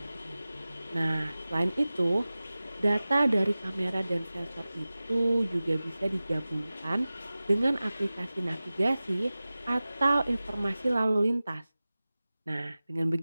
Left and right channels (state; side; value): inverted; both; correlation -0.97